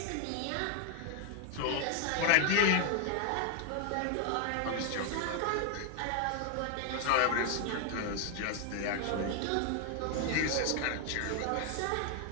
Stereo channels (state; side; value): different; both; correlation 0.00